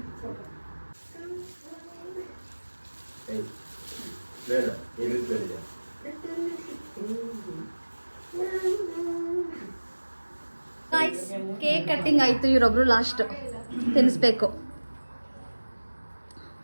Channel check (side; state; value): both; inverted; correlation -1.00